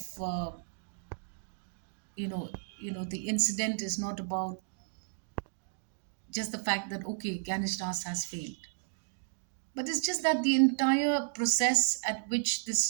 the incident is not about just the fact that okay, Ganesh Das has failed, but it's just that the entire process at which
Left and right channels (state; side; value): silent; left; digital silence